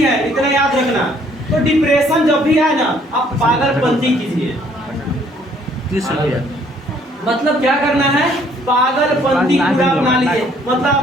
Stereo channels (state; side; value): normal; both; correlation 0.62